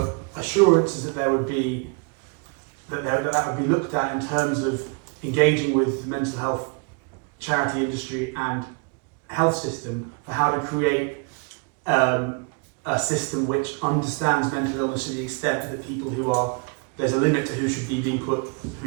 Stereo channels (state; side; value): quieter; left; 34.2 dB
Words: assurances that that would be looked at in terms of engaging with the mental health charity industry and health system for how to create a system which understands mental illness to the extent that people there's a limit to who should be being put,